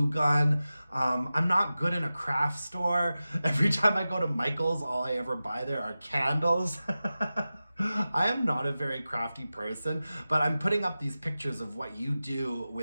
gun. I'm not good in a craft store. Every time I go to Michael's, all I ever buy there are candles. I am not a very crafty person, but I'm putting up these pictures of what you do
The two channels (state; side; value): inverted; both; correlation -0.95